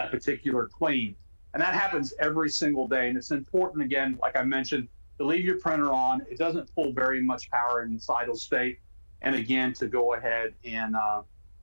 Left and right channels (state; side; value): inverted; both; correlation -1.00